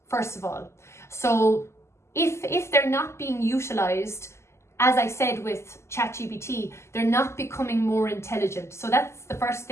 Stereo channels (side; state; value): right; late; 0.13 ms